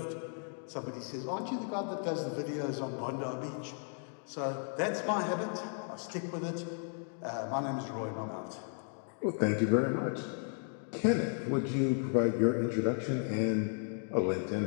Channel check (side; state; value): right; silent; 55 dB below the other